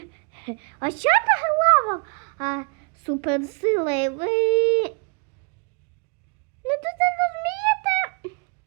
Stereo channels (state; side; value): quieter; left; 34.2 dB